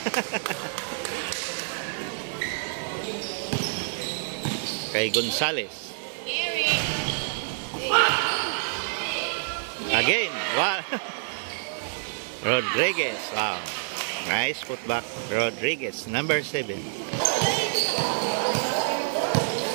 Kay Gonzales. Again, wow. Rodriguez, wow. Nice putback, Rodriguez, number 7.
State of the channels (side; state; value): left; silent; digital silence